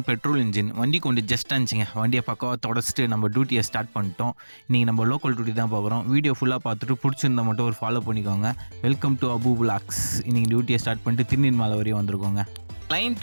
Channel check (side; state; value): both; inverted; correlation -1.00